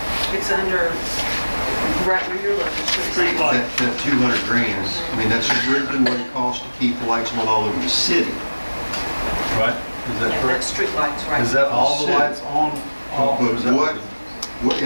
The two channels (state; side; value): inverted; both; correlation -1.00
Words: It's under, right where you're looking. Street light. That 200 grand, I mean, that's originally what it costs to keep the lights on all over the city. Right? Is that Yeah, correct? that's street lights, right. Is that all the lights on? All But is that